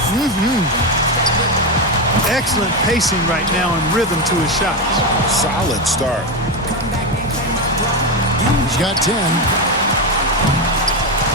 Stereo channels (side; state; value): both; normal; correlation 0.12